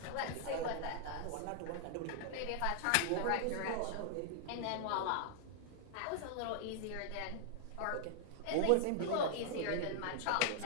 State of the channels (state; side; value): different; both; correlation -0.01